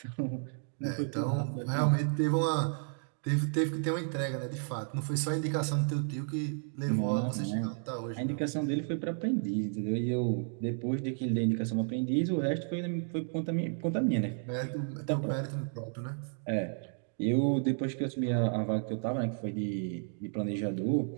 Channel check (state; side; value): silent; left; 56 dB below the other